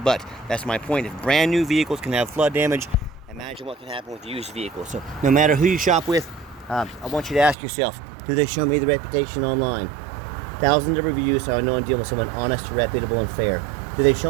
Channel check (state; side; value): drops out; left; at 7.6 s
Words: that's my point. If brand new vehicles can have flood damage, imagine what can happen with used vehicles. So no matter who you shop with, I want you to ask yourself, do they show me the reputation online? Thousands of reviews, so I know I'm dealing with someone honest, reputable, and fair. Do they